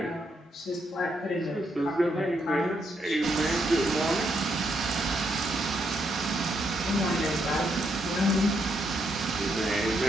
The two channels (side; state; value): both; normal; correlation 0.77